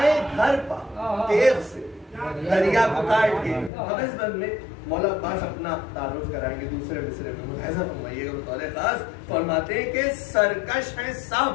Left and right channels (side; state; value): right; drops out; at 3.7 s